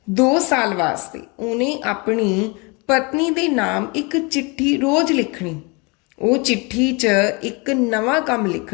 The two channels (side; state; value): right; quieter; 29.2 dB